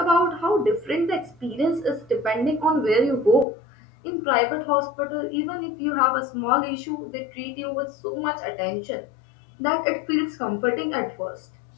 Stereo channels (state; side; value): drops out; right; at 3.5 s